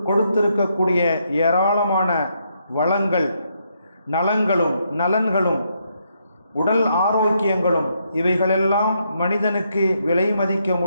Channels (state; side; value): inverted; both; correlation -0.76